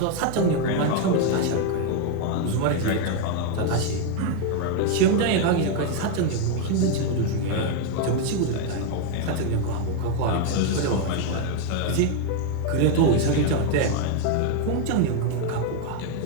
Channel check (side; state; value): both; different; correlation 0.00